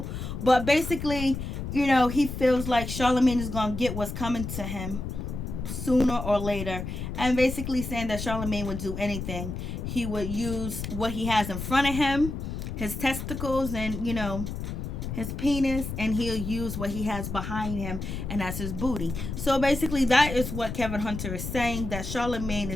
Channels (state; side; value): noise; left; rumble, 6 dB below the sound